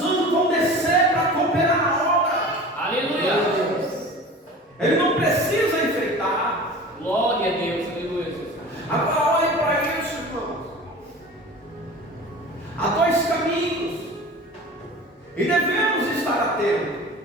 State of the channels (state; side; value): normal; both; correlation 0.38